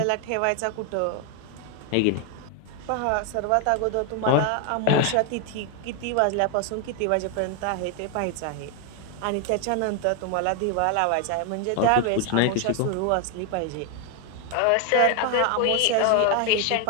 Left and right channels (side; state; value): both; different; correlation 0.01